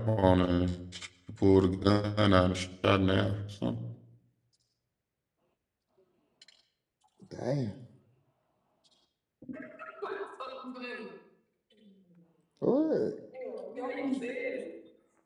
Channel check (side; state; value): both; identical; correlation 1.00